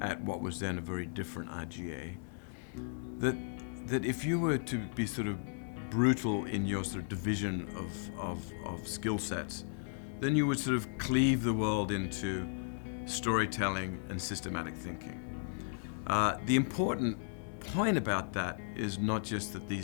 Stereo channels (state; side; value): silent; right; digital silence